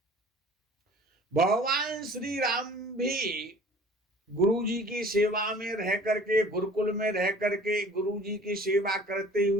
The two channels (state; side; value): normal; both; correlation 0.47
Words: भगवान श्री राम भी गुरु जी की सेवा में रह करके, गुरुकुल में रह करके गुरु जी की सेवा करते